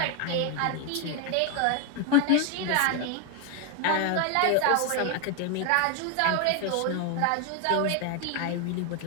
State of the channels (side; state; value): both; different; correlation 0.01